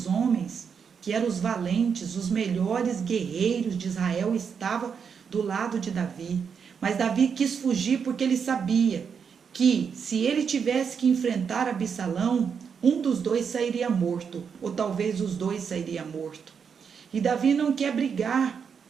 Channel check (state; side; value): quieter; left; 6.6 dB